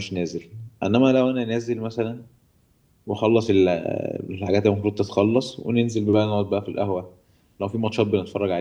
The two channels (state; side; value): identical; both; correlation 1.00